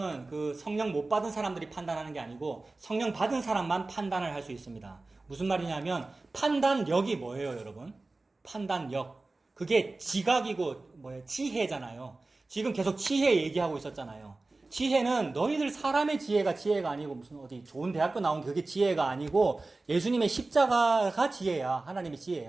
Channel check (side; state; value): left; quieter; 3.3 dB